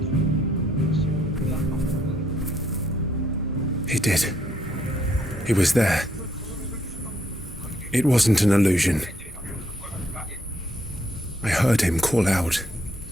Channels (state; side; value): normal; both; correlation 0.71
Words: He did. He was there. It wasn't an illusion. I heard him call out